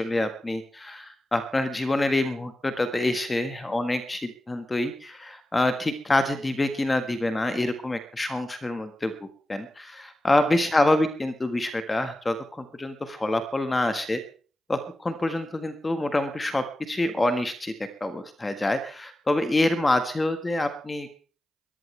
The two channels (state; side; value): normal; both; correlation 0.93